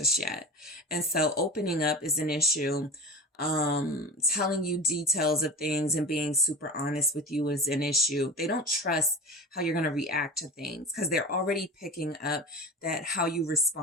yet. And so opening up is an issue. Telling you details of things and being super honest with you is an issue. They don't trust how you're going to react to things because they're already picking up that how you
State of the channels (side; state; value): both; normal; correlation 0.31